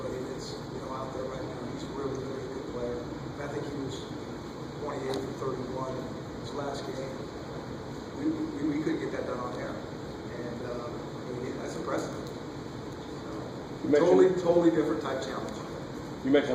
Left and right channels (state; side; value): identical; both; correlation 1.00